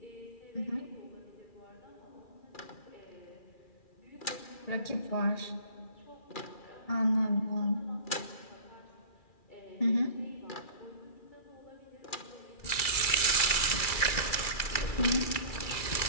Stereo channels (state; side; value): late; right; 2.4 ms